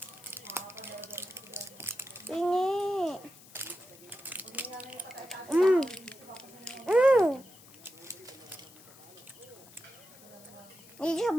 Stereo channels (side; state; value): left; noise; hiss, 22 dB below the sound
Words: Ini. Hindi siya